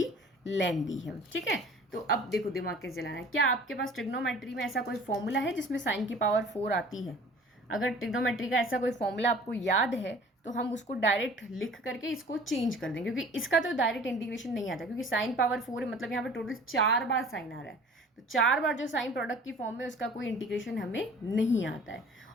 लेंदी है। ठीक है, तो अब देखो दिमाग कैसे चलाना है। क्या आपके पास ट्रिग्नोमेट्री में ऐसा कोई फॉर्मूला है जिसमें साइन की पावर 4 आती है? अगर ट्रिग्नोमेट्री का ऐसा कोई फॉर्मूला आपको याद है तो हम उसको डायरेक्ट लिख करके इसको चेंज कर देंगे, क्योंकि इसका तो डायरेक्ट इंटीग्रेशन नहीं आता, क्योंकि साइन पावर 4 है, मतलब यहाँ पे टोटल 4 बार साइन आ रहा है। तो 4 बार जो साइन प्रोडक्ट की फॉर्म में उसका कोई इंटीग्रेशन हमें नहीं आता है।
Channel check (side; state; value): both; normal; correlation 0.47